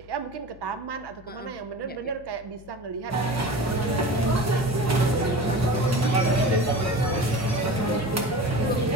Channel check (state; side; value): noise; left; hum, 22 dB below the sound